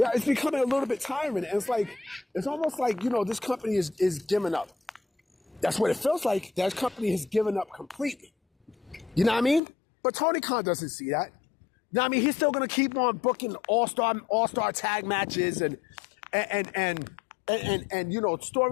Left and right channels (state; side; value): drops out; right; at 9.6 s